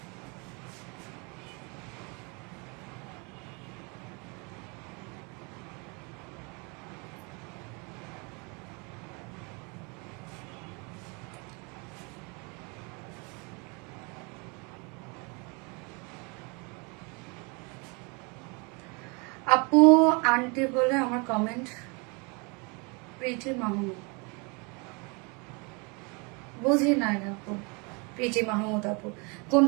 আপু আন্টি বলে আমার কমেন্ট, প্রিটি মাহমুদ, বুঝি নাই আপু, প্রিটি মাহমুদ আপু,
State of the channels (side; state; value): left; quieter; 31.1 dB